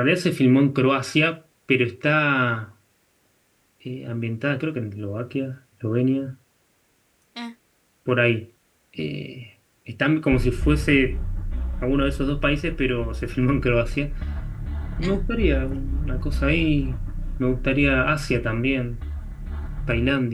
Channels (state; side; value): identical; both; correlation 1.00